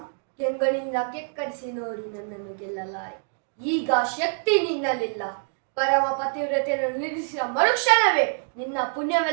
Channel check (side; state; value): left; silent; 61 dB below the other